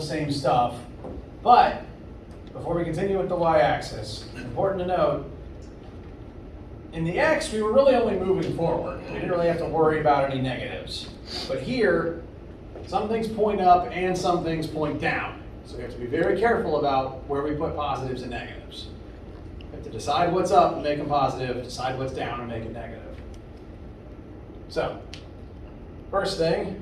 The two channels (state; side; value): identical; both; correlation 1.00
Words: same stuff, but before we continue with the y-axis, it's important to note, in the x, we were really only moving forward. We didn't really have to worry about any negatives. But here, some things point up and some things point down. So we have to be very careful about where we put positives and negatives. We have to decide what's up and make them positive, decide what's down and make it negative. So, first thing,